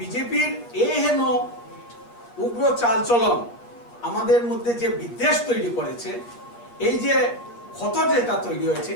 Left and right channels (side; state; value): right; late; 8.6 ms